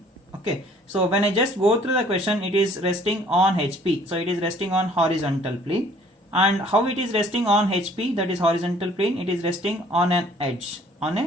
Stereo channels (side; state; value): both; normal; correlation 0.56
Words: Okay, so when I just go through the question, it is resting on HP. So it is resting on horizontal plane. And how it is resting on HP, that is horizontal plane, it is resting on an edge.